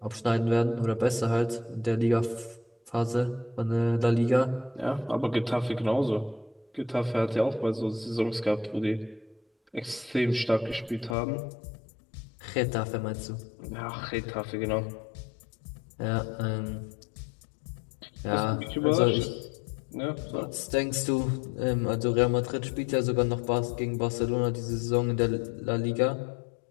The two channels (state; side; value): drops out; right; at 11.2 s